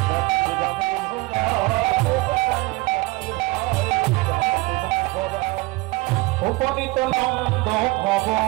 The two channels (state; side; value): quieter; left; 22.3 dB